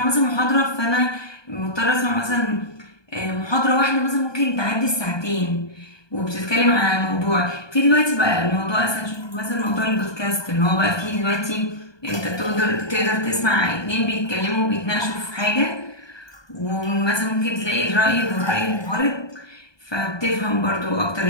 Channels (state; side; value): late; right; 1.2 ms